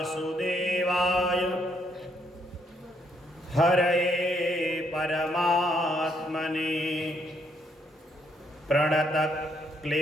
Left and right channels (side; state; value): both; normal; correlation 0.72